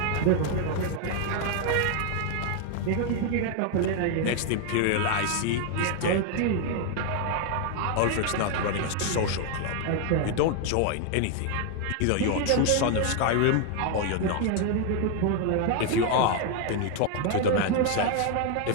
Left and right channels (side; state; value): both; different; correlation 0.01